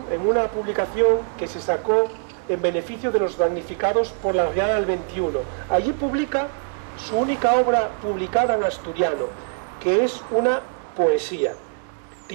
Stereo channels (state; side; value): silent; left; digital silence